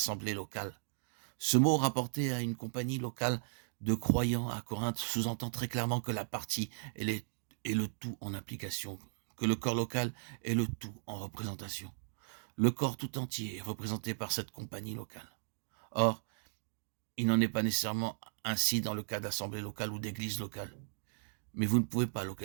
locale. Ce mot rapporté à une compagnie locale de croyants à Corinthe sous-entend très clairement que la partie est le tout en application, que le corps local est le tout en représentation. Le corps tout entier est représenté par cette compagnie locale. Or, il n'en est pas nécessairement ainsi dans le cas d'assemblée locale ou d'église locale. Mais vous ne pouvez pas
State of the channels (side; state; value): left; silent; digital silence